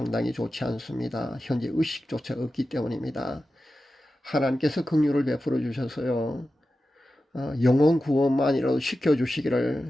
좋지 않습니다. 현재 의식조차 없기 때문입니다. 하나님께서 긍휼을 베풀어 주셔서요 영혼 구원만이라도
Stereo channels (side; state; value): both; normal; correlation 0.93